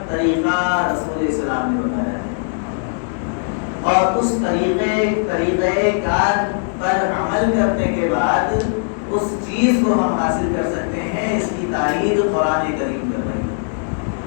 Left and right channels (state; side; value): silent; right; digital silence